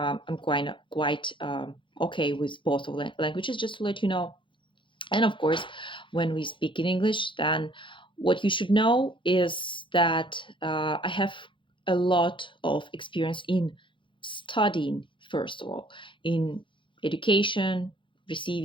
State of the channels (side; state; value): right; late; 0.24 ms